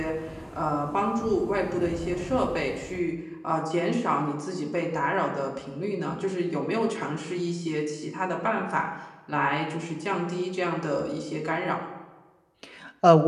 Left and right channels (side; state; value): both; identical; correlation 1.00